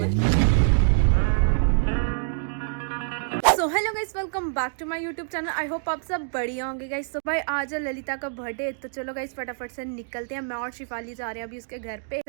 So hello guys, welcome back to my YouTube channel. I hope आप सब बढ़िया होंगे गाइस। तो भाई आज है ललिता का बर्थडे, तो चलो गाइस फटाफट से निकलते हैं। मैं और शिफाली जा रहे हैं अभी उसके घर पे।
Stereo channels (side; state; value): left; silent; digital silence